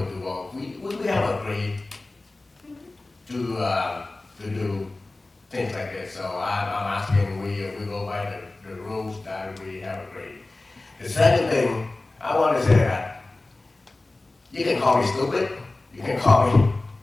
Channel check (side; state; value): right; quieter; 3.0 dB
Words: to vote? We have agreed to do things like this. So I'm asking we go by the rules that we have agreed. The second thing, I want to say that you can call me stupid, you can call me